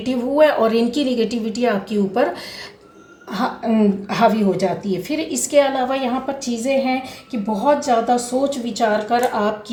हुए और इनकी निगेटिविटी आपके ऊपर हावी हो जाती है। फिर इसके अलावा यहाँ पर चीज़ें हैं कि बहुत ज़्यादा सोच विचार कर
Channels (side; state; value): both; identical; correlation 1.00